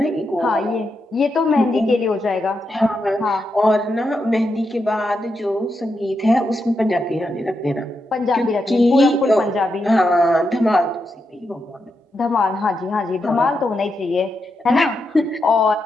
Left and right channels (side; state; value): both; normal; correlation 0.85